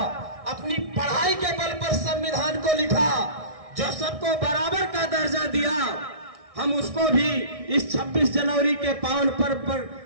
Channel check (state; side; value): late; left; 1.6 ms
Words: अपनी पढ़ाई के बल पर संविधान को लिखा, जो सबको बराबर का दर्जा दिया। हम उसको भी इस 26 जनवरी के पावन पर्व पर